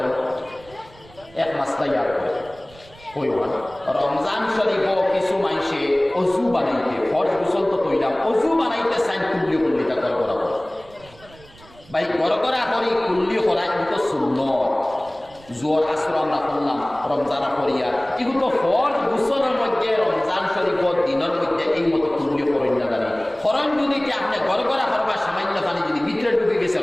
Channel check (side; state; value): right; noise; rumble, 24 dB below the sound